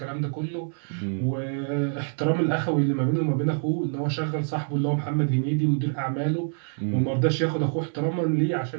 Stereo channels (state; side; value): silent; left; 59 dB below the other